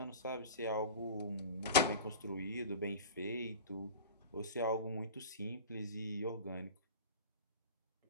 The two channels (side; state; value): both; inverted; correlation -0.33